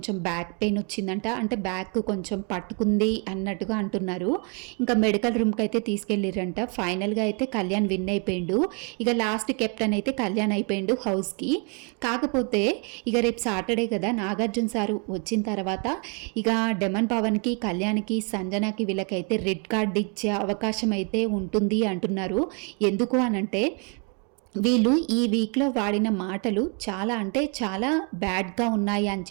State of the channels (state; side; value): quieter; left; 35.9 dB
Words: బ్యాక్ పెయిన్ వచ్చిందంట. అంటే బ్యాక్ కొంచెం పట్టుకుంది అన్నట్టుగా అంటున్నారు. ఇంకా మెడికల్ రూమ్కి అయితే తీసుకెళ్ళిరంట. ఫైనల్గా అయితే కళ్యాణ్ విన్ అయిపోయిండు. ఇక లాస్ట్ కెప్టెన్ అయితే కళ్యాణ్ అయిపోయిండు హౌస్కి. కాకపోతే ఇక రేపు సాటర్డే కదా, నాగార్జున సారు వచ్చిన తర్వాత ఇక డెమన్ పవన్కి, కళ్యాణ్కి, సంజనాకి వీళ్ళకైతే రెడ్ కార్డ్ ఇచ్చే అవకాశం అయితే ఉంటుంది అంటున్నారు. ఎందుకు అనంటే వీళ్ళు ఈ వీక్లో వాడిన మాటలు చాలా అంటే చాలా బ్యాడ్గా ఉన్నాయి అని